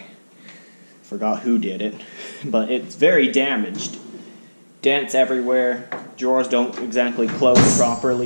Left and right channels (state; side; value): inverted; both; correlation -1.00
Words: forgot who did it, but it's very damaged. Dents everywhere, drawers don't exactly close